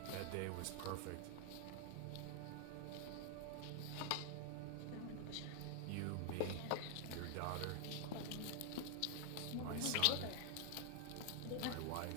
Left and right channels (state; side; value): different; both; correlation 0.00